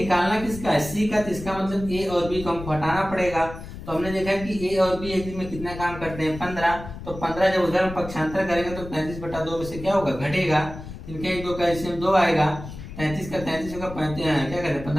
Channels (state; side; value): noise; left; rumble, 12 dB below the sound